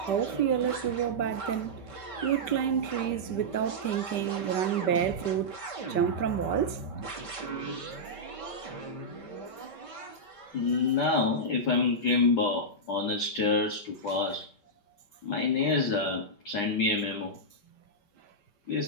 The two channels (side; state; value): right; late; 5.2 ms